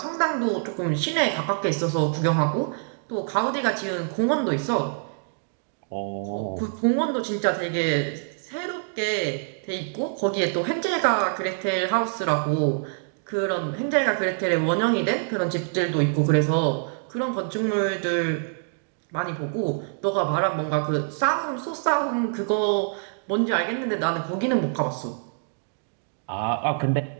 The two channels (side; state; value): left; silent; digital silence